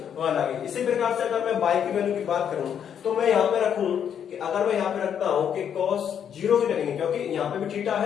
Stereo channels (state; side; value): quieter; right; 8.5 dB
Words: 1 आ गई। इसी प्रकार से अगर मैं y की वैल्यू की बात करूं तो मैं यहाँ पे रखूं कि अगर मैं यहाँ पे रखता हूं कि cos 0 की लगेंगे, क्योंकि यहाँ पे भी थीटा